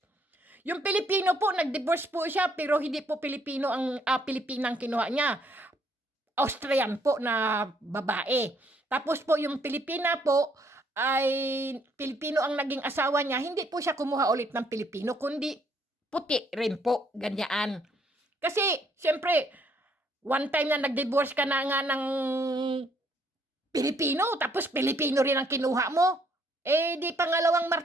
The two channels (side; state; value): both; normal; correlation 0.68